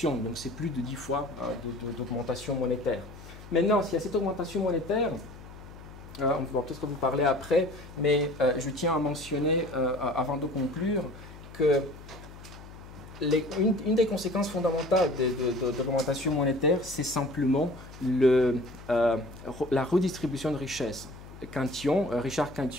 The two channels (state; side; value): noise; left; hum, 16 dB below the sound